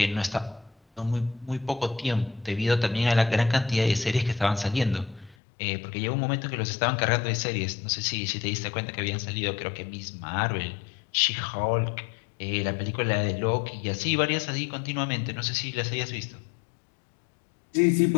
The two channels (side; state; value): right; drops out; at 5.4 s